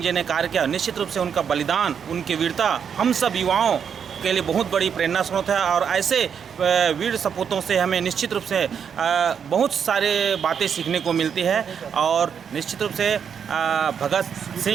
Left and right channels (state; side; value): quieter; left; 7.4 dB